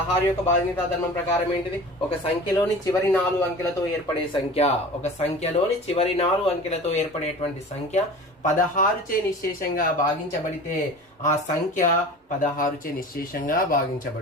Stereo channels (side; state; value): both; normal; correlation 0.38